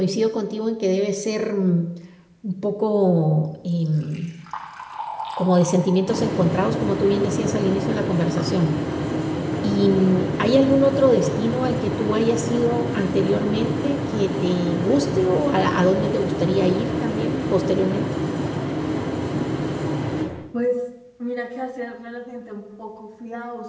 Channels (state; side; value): identical; both; correlation 1.00